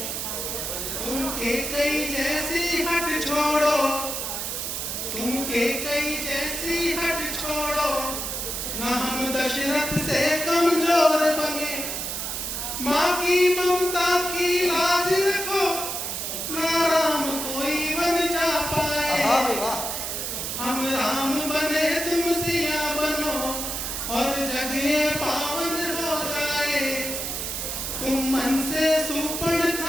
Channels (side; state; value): right; noise; hiss, 3 dB below the sound